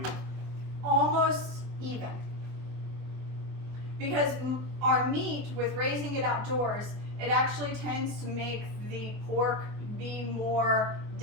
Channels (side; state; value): left; late; 24 ms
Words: Almost even. Because our meat, with raising it outdoors, it actually tends to make the pork be more